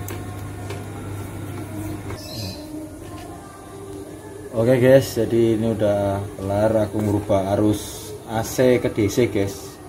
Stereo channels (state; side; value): identical; both; correlation 1.00